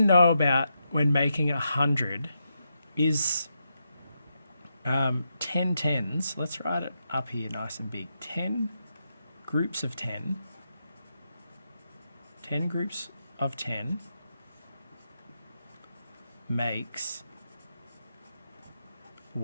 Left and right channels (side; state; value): both; inverted; correlation -0.84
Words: know about when making 100 is 10 tens. Let's write it up here nice and big. 10 groups of 10. 10 groups of 10 makes